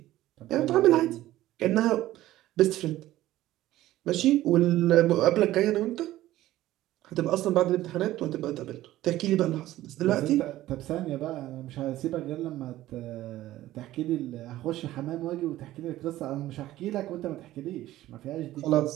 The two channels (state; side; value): quieter; left; 15.1 dB